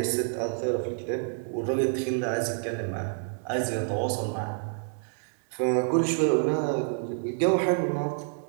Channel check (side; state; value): left; silent; 59 dB below the other